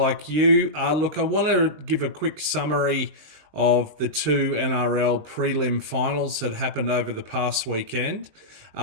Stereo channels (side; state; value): left; late; 20 ms